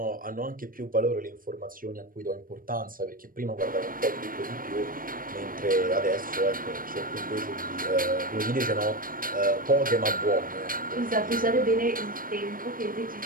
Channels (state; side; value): late; left; 0.41 ms